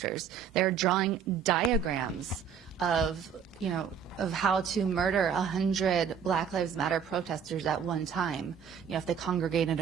They're drawing diagrams of, of how to murder 100 Black Lives Matter protesters at one time, if they congregate in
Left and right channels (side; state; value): left; quieter; 7.3 dB